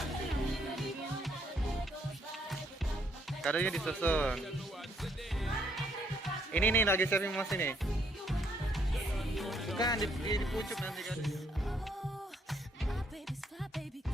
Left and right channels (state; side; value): normal; both; correlation 0.69